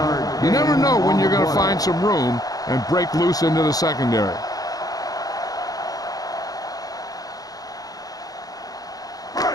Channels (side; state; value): right; late; 0.18 ms